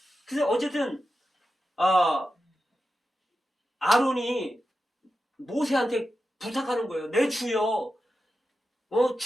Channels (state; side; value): normal; both; correlation 0.91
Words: 그래서 어쨌든 아론이 모세한테 부탁하는 거예요. 내 주여,